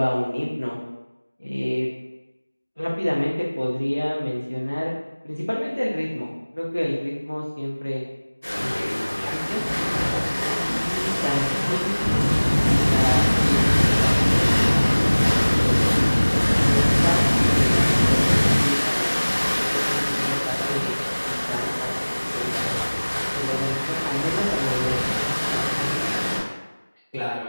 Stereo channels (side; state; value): both; inverted; correlation -1.00